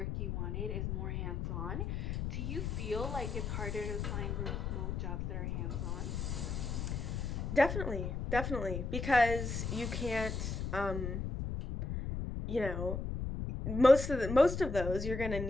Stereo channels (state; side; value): noise; left; rumble, 3 dB below the sound